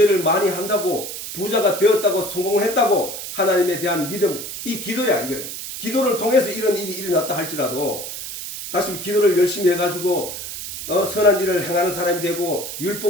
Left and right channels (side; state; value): right; noise; hiss, 8 dB below the sound